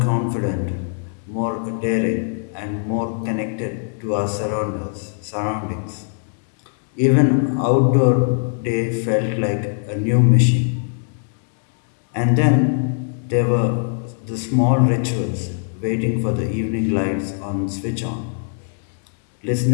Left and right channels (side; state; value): right; silent; digital silence